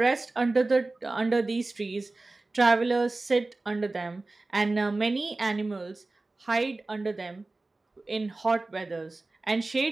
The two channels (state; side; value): quieter; left; 3.2 dB